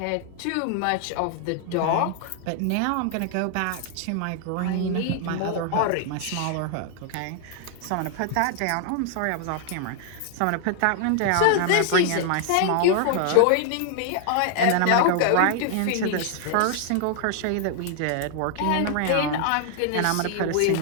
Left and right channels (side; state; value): both; different; correlation 0.00